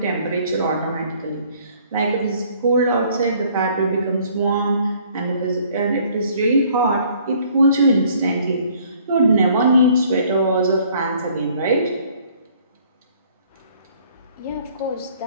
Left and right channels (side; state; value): both; inverted; correlation -0.59